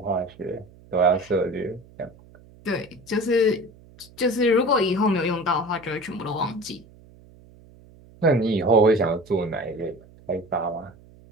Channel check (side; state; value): right; noise; hum, 24 dB below the sound